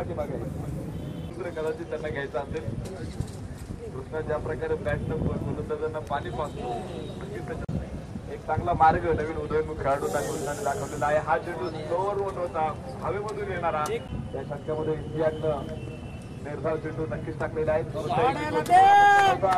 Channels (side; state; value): both; identical; correlation 1.00